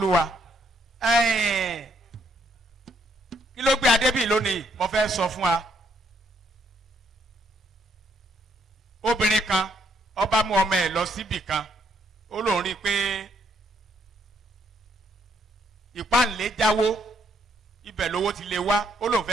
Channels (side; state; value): both; normal; correlation 0.72